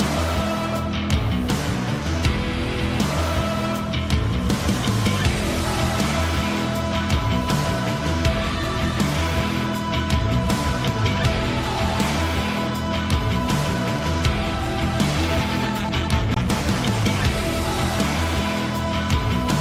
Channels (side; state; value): both; identical; correlation 1.00